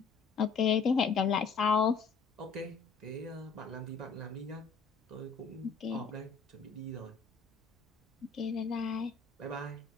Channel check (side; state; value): right; quieter; 5.3 dB